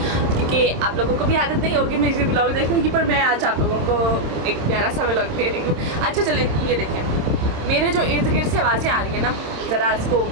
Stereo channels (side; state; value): left; late; 27 ms